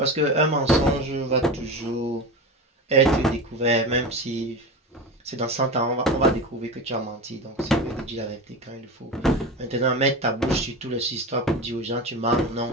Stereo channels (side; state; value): both; normal; correlation 0.26